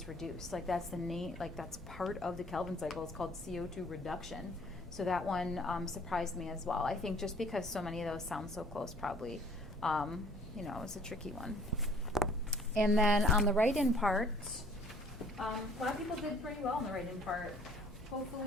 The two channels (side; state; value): both; normal; correlation 0.56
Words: reduced. Like that's the name. Like that's part of the Calvin cycle. It's called CO2 reduction. So that one surprised me as well. I think just because so many of those sound so close, probably, it's a tricky one. And then on the write-in part, a lot of people did pretty well on the write-in part.